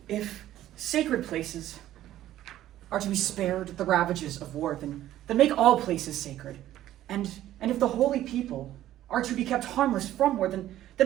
If sacred places are to be spared the ravages of war, then make all places sacred. And if the holy people are to be kept harmless from war, then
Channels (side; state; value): left; quieter; 13.3 dB